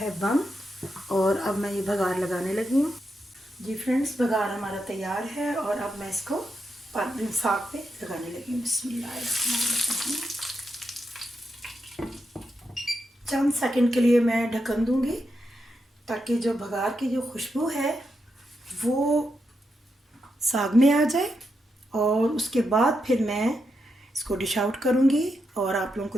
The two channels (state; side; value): normal; both; correlation 0.84